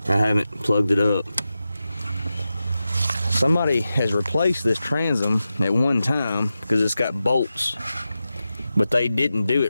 I haven't plugged it up. Somebody has replaced this transom at one time because it's got bolts, but they didn't do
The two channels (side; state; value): both; inverted; correlation -0.91